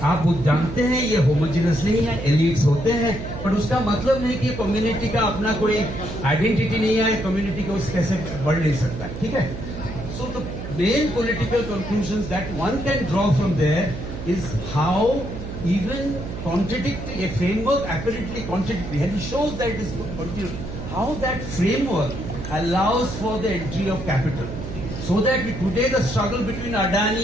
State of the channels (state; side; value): noise; right; hum, 8 dB below the sound